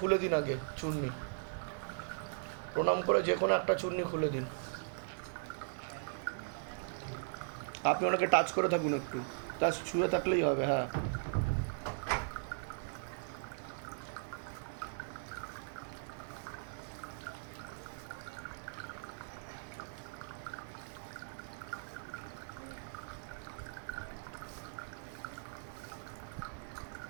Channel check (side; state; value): left; silent; digital silence